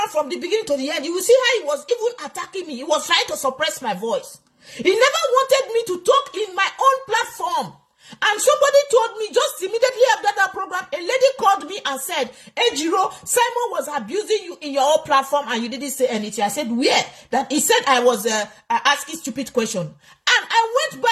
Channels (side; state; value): both; identical; correlation 1.00